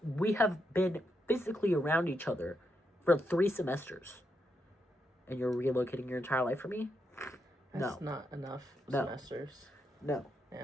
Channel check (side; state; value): both; normal; correlation 0.82